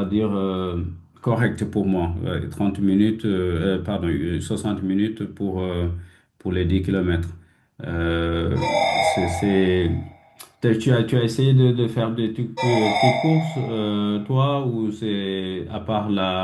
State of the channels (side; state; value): both; identical; correlation 1.00